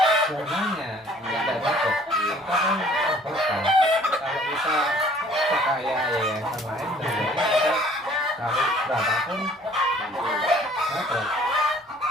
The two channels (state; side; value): normal; both; correlation 0.55